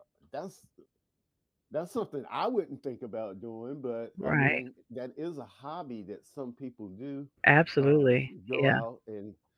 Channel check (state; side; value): identical; both; correlation 1.00